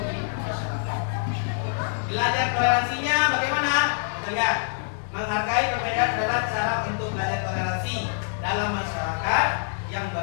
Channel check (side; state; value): right; silent; 61 dB below the other